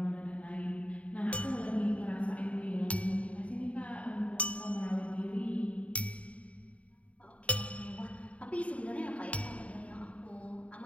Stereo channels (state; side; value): late; right; 0.066 ms